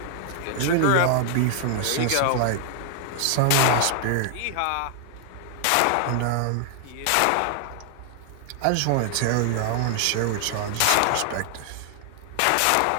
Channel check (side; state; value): both; different; correlation 0.00